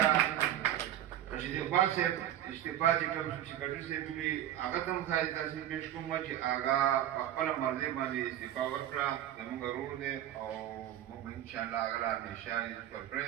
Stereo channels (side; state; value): left; quieter; 11.9 dB